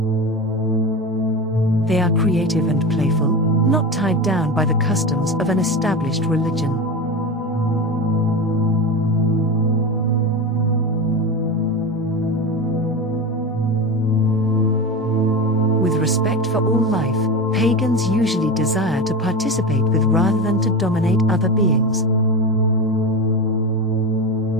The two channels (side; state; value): both; normal; correlation 0.23